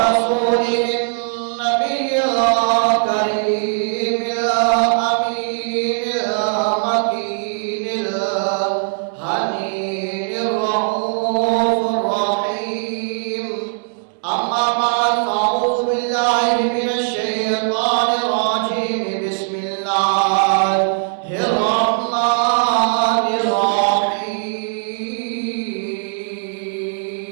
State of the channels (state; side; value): silent; left; 65 dB below the other